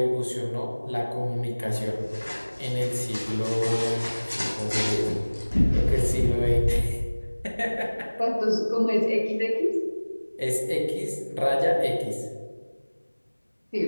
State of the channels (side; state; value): both; inverted; correlation -1.00